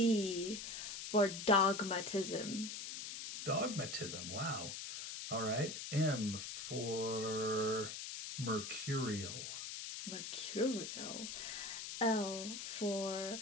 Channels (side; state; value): left; noise; hiss, 7 dB below the sound